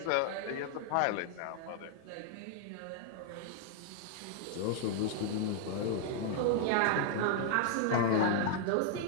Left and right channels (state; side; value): different; both; correlation 0.00